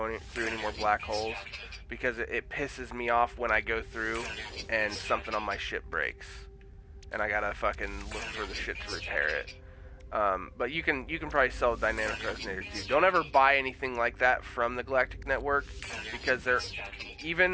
through any more black holes, because it pisses me off when I go through and something on my ship breaks, and I gotta fucking look for the shit to repair it. But you can probably sell a dynamic resonator too. Don't ever buy anything like that from the Galactic Network, because they're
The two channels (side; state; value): both; identical; correlation 1.00